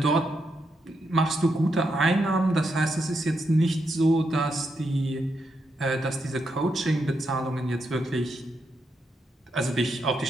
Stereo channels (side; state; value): both; normal; correlation 0.82